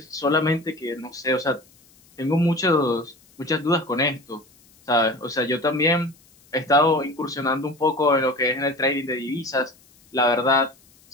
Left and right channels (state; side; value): noise; left; hiss, 30 dB below the sound